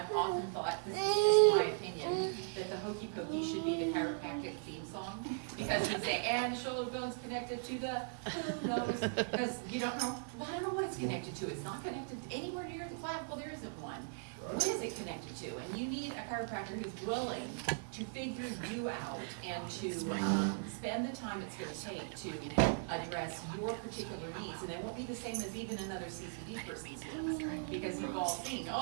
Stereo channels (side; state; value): left; silent; digital silence